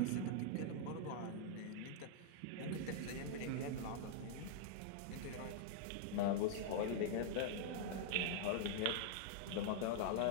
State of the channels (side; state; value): both; different; correlation -0.01